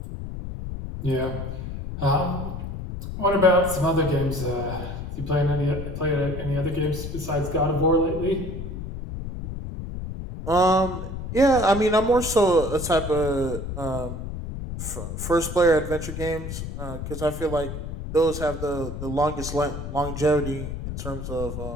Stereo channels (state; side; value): noise; left; rumble, 7 dB below the sound